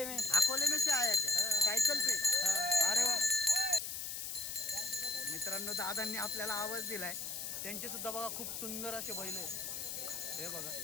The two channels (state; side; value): noise; left; hiss, 5 dB below the sound